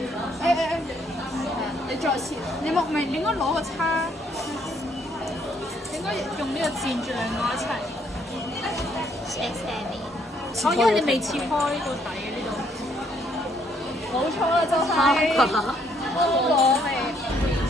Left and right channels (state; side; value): normal; both; correlation 0.68